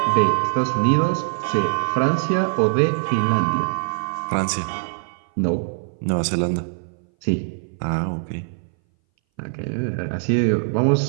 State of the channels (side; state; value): left; silent; 60 dB below the other